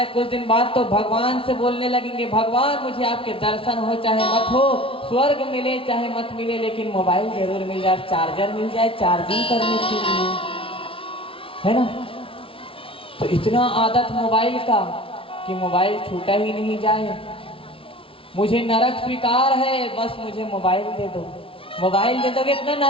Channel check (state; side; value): late; right; 0.26 ms